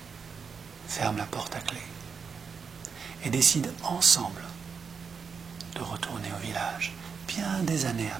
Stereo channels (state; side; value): quieter; left; 5.9 dB